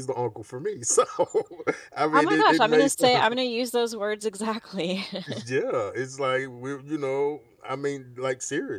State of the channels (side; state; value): both; identical; correlation 1.00